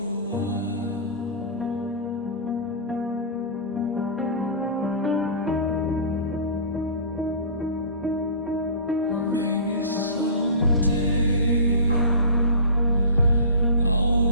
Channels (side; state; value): both; inverted; correlation -0.34